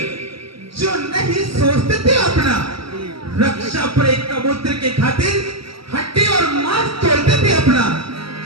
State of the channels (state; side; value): late; left; 0.75 ms